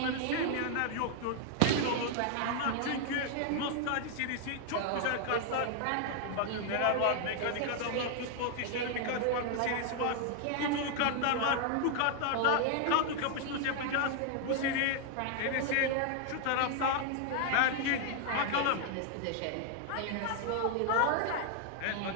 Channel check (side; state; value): both; different; correlation 0.00